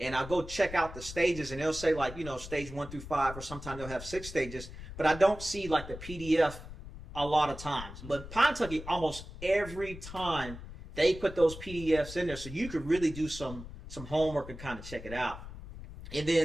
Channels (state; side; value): noise; left; rumble, 12 dB below the sound